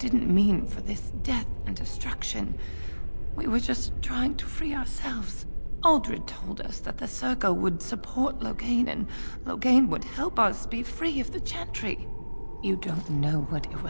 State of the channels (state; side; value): inverted; both; correlation -1.00